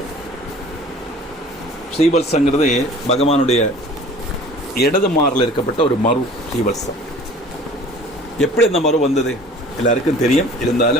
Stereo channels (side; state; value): both; normal; correlation 0.46